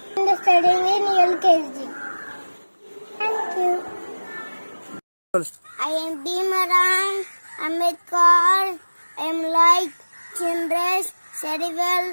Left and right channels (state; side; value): inverted; both; correlation -1.00